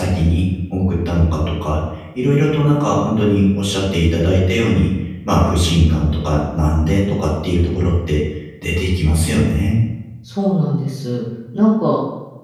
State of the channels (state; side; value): identical; both; correlation 1.00